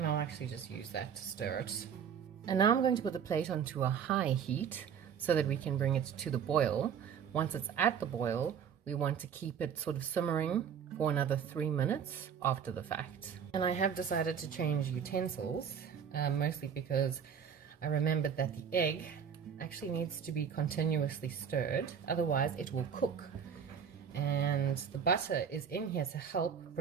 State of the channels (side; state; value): left; quieter; 7.6 dB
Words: I'll actually just use that to stir it. And now I'm going to put the plate onto a high heat so that we can bring it to the boil. Once it's at the boil, we want to keep it sort of simmering for another 3 minutes after the fact. And I have decided to change utensils. Mostly because I remembered that the egg actually needs to be continuously stirred, otherwise it will cook. And the butter is in here to help